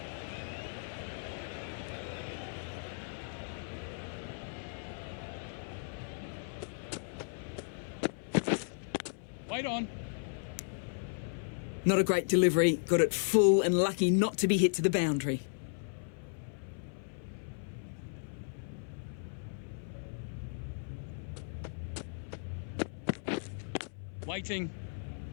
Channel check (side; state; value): right; silent; 54 dB below the other